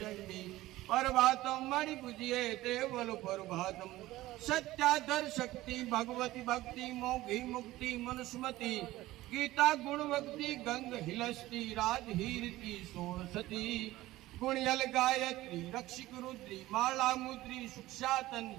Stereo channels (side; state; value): left; quieter; 16.9 dB